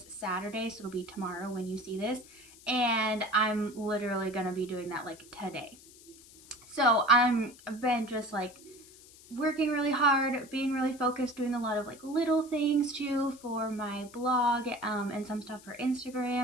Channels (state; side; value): noise; left; hiss, 22 dB below the sound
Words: Saturday. So it'll be tomorrow when you see this. And I'm literally gonna be doing that like today. So I've been just like working really hard, being really focused, doing a lot of like little things too for my blog, and some stuff for